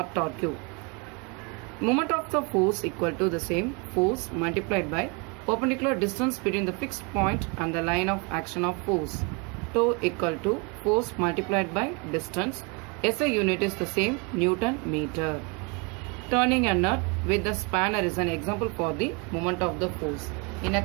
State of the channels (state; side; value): quieter; left; 31.3 dB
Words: torque. Moment of the force equal to the same force multiplied by perpendicular distance between the fixed point and the line of action of force. Tau equal to force multiplied by distance. SI unit is the same, Newton meter. Turning a nut with the spanner is an example for the moment of the force. In